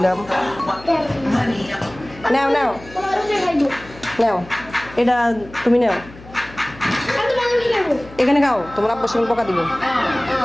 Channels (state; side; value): noise; left; hum, 19 dB below the sound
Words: নাও নাও নাও, এটা তুমি নাও, এখানে খাও, তোমার আব্বুর সঙ্গে পোকা দিব।